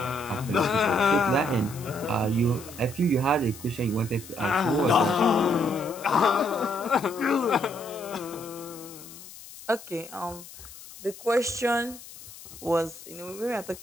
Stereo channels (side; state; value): left; noise; hiss, 17 dB below the sound